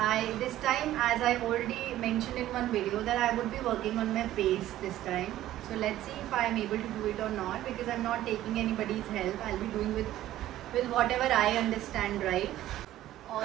this time, as I already mentioned in one video, that I would be working on my pace this time. So let's see if I am able to do it or not, because I'm not taking anybody's help. I'll be doing with whatever I understand, right?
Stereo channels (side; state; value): left; quieter; 13.8 dB